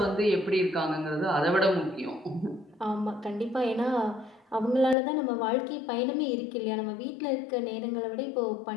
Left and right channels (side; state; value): right; drops out; at 5.0 s